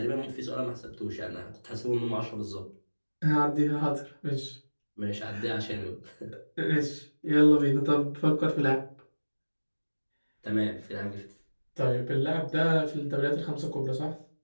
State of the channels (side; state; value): both; inverted; correlation -1.00